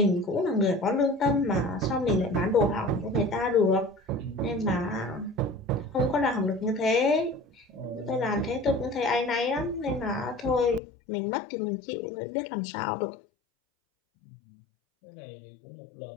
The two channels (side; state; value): right; drops out; at 10.8 s